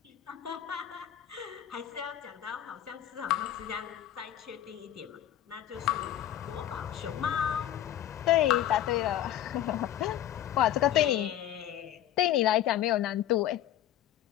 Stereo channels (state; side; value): quieter; right; 11.8 dB